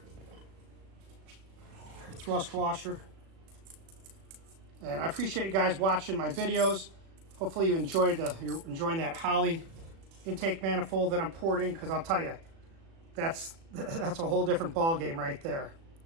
Our thrust washer. And I appreciate you guys watching my videos. Hopefully you're enjoying that Holley intake manifold that I'm porting, because I'll tell you, that's a whole different ball game right there.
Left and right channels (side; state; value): left; late; 36 ms